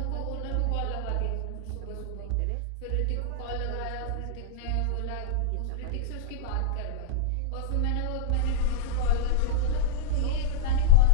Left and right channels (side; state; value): both; different; correlation -0.01